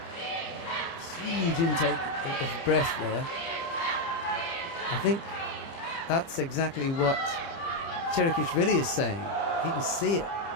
Huge intake of breath there. I think that's exactly what Tchrikishvili is saying. He can see it.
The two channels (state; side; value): late; right; 30 ms